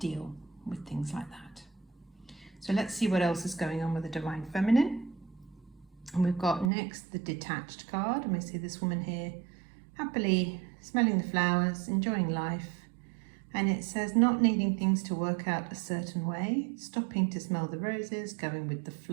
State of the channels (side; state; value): left; drops out; at 6.7 s